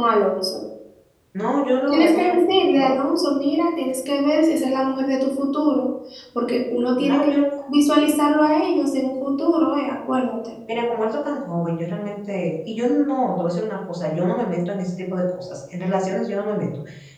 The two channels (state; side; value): identical; both; correlation 1.00